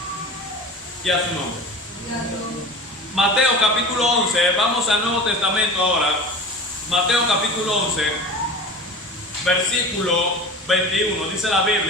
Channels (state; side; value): normal; both; correlation 0.35